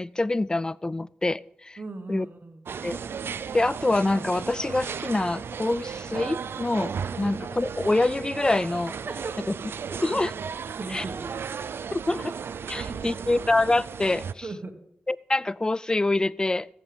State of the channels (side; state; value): both; normal; correlation 0.92